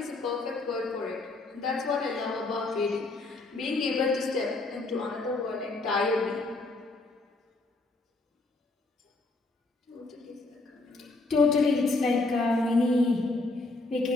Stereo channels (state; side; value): quieter; right; 3.2 dB